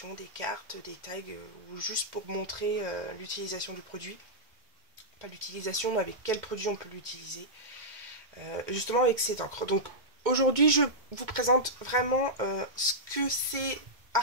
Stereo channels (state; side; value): late; left; 2.2 ms